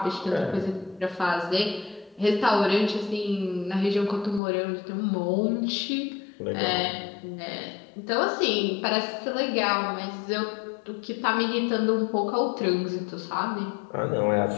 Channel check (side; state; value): right; drops out; at 4.4 s